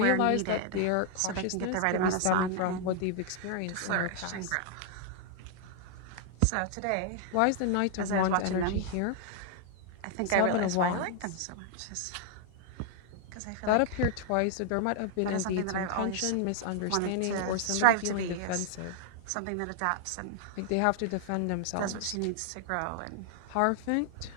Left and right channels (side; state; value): both; different; correlation 0.00